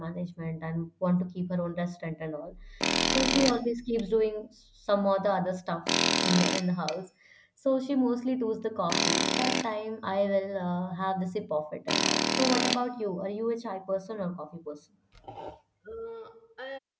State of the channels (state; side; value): identical; both; correlation 1.00